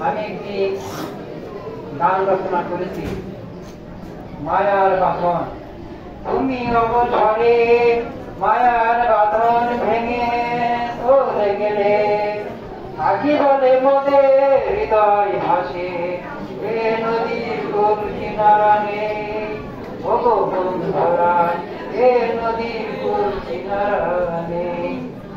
আমি একটি গান রচনা করেছি, মায়ার বাঁধন। তুমি অবসরে মায়ার বাঁধন ভেঙে চলে গেলে, আখি বলে মোদের হৃদয় ভাসে, এ নদীর কোল কিনারা নেই। ওগো বন্ধুরা, এ নদীর কোল কিনারা নেই।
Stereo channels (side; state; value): both; identical; correlation 1.00